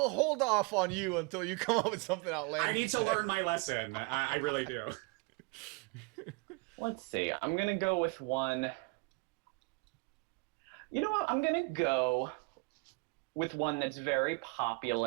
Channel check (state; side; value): quieter; left; 30.6 dB